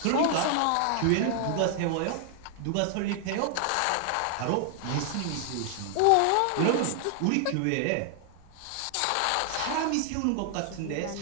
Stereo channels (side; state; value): both; different; correlation 0.00